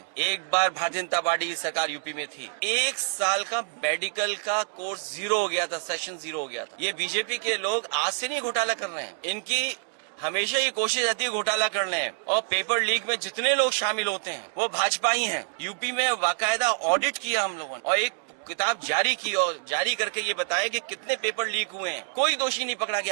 एक बार भारतीय जनता पार्टी की सरकार यूपी में थी, 1 साल का मेडिकल का कोर्स 0 हो गया था, सेशन 0 हो गया था। ये बीजेपी के लोग आज से नहीं घोटाला कर रहे हैं, इनकी हमेशा ये कोशिश रहती है घोटाला करने। और पेपर लीक में जितने लोग शामिल होते हैं वो भाजपा ही हैं। यूपी में बाकायदा ऑडिट किया हम लोगों ने और एक किताब जारी की और जारी करके ये बताया कि कितने पेपर लीक हुए हैं। कोई दोषी नहीं पकड़ा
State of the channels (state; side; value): silent; left; digital silence